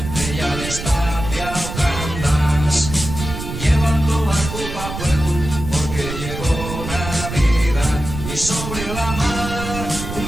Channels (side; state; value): right; noise; rumble, 7 dB below the sound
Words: de ya destacia o candás, llevando barco pa' puerto porque llegó Navidad y sobre la mar un